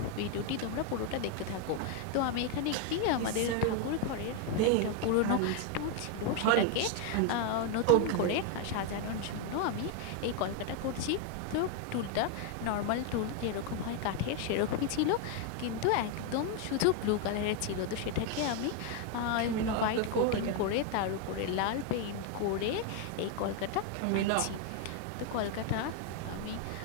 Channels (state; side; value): different; both; correlation 0.01